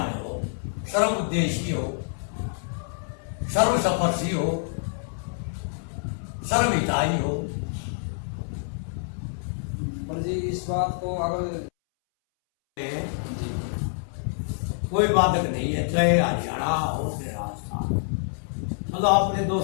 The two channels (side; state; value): right; silent; 60 dB below the other